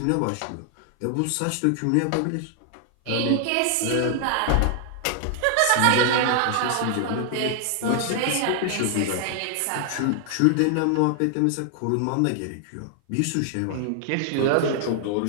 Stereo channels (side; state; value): both; different; correlation 0.00